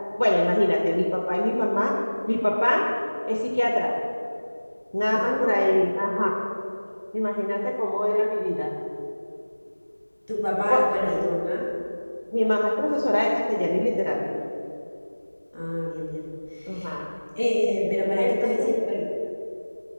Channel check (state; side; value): inverted; both; correlation -1.00